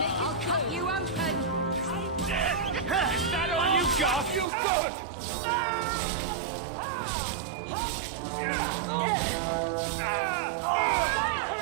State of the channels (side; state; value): left; drops out; at 4.5 s